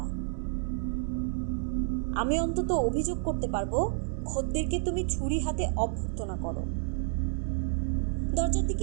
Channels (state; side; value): silent; left; digital silence